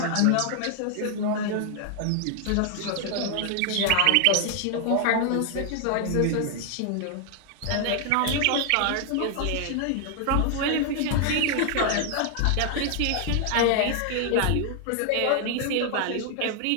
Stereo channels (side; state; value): both; different; correlation 0.00